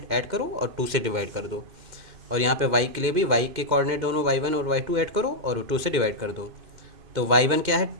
ऐड करो और 2 से डिवाइड कर दो, और यहाँ पे y के लिए भी y के कोऑर्डिनेट दोनों y1 और y2 ऐड करो और 2 से डिवाइड कर दो। तो y1 क्या है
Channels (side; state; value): left; late; 2.1 ms